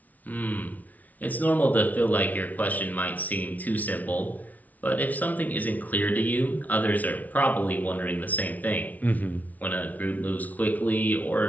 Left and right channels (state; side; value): late; right; 0.075 ms